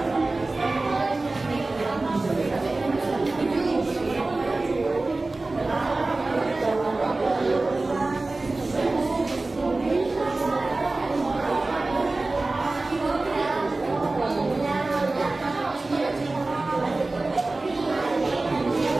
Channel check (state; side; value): quieter; left; 3.2 dB